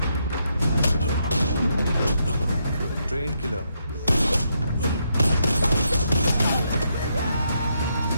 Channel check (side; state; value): both; inverted; correlation -0.78